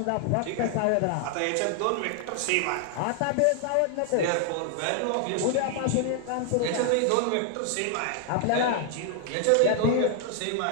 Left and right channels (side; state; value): both; different; correlation 0.00